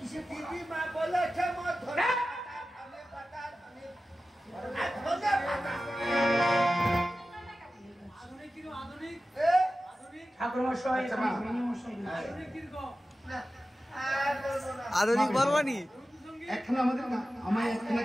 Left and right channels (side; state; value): both; normal; correlation 0.94